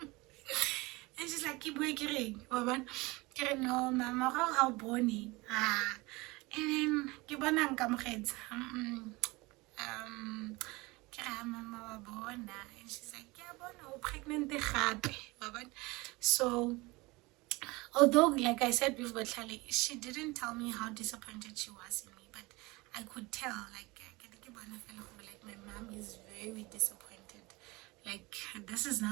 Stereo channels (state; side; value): quieter; left; 23.2 dB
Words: And she's like, keep working, no, mama, how bony. And then Kibana Kamreds. Mama Bona, and she's like, yeah, Bona, pregnant. So although, like I said with Botlhali, she didn't tell me how disappointed she was in me, but I could tell, like my mom is very disappointed. Like, this is